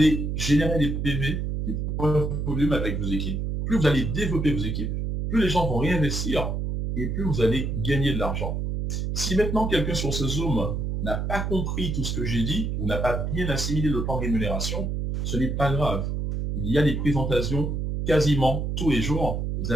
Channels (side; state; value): right; noise; hum, 2 dB below the sound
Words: générer des PV, des points de volume avec vos équipes, plus vous allez développer vos équipes, plus les gens vont réinvestir et plus vous allez gagner de l'argent. Si maintenant quelqu'un sur ce Zoom n'a pas compris tout ce que j'ai dit ou n'a pas bien assimilé le plan de rémunération, ce n'est pas grave. Il y a des présentations quasiment tous les jours. Vous